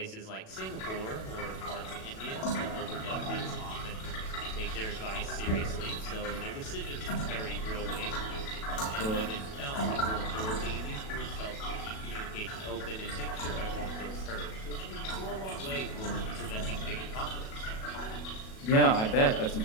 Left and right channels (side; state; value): right; late; 37 ms